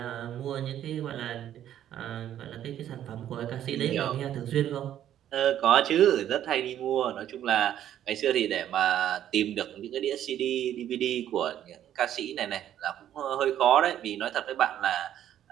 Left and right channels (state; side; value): quieter; left; 11.1 dB